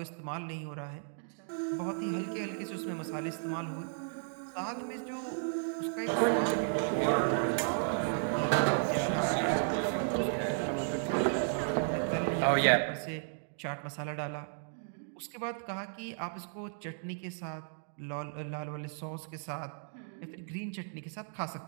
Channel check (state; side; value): silent; left; digital silence